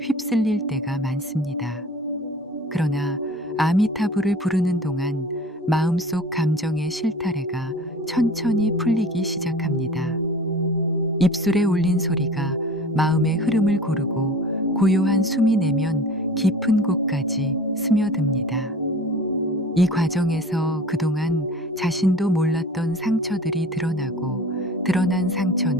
휩쓸릴 때가 많습니다. 그러나 아미타불을 부르는 동안 마음속 감정의 실타래가 천천히 풀리기 시작합니다. 입술에 올린 소리가 마음의 흐름을 고르고 고요한 숨이 내면 깊은 곳까지 스며듭니다. 이 과정에서 그동안 자신도 몰랐던 상처들이 드러나고 드러난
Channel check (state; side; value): normal; both; correlation 0.42